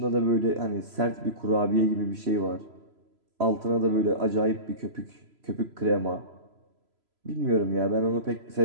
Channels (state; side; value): late; left; 3.0 ms